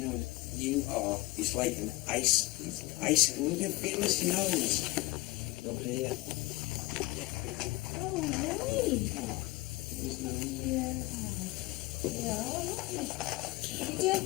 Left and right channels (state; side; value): quieter; right; 20.8 dB